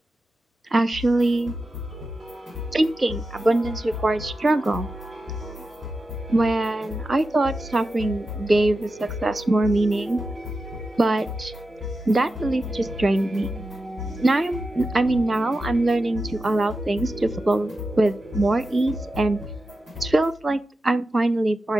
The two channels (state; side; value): normal; both; correlation 0.91